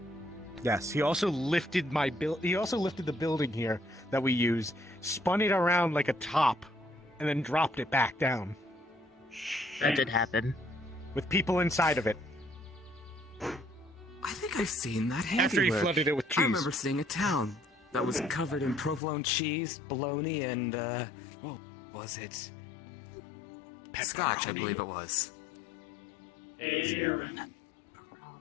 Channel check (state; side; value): drops out; right; at 19.0 s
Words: Yes, he also lifted he also lifted the building here that we use, spun it around like a top, and then dropped it back down. That did happen. With people inside of it. I think think I've seen that handiwork. After he flooded it with cheese. I remember seeing a town that was covered in provolone cheese, bologna, and what was it? Scotch, I believe it was.